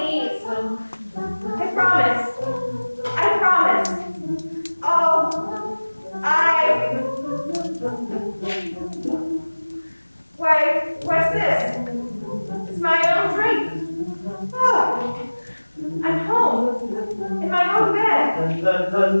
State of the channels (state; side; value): inverted; both; correlation -1.00